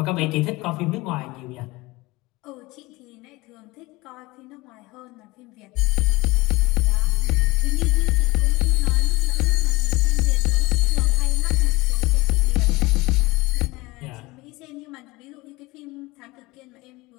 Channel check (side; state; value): right; quieter; 21.8 dB